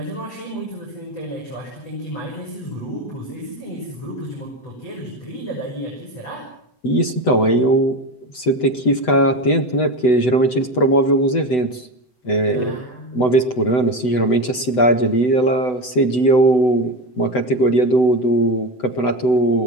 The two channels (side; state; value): right; late; 8.0 ms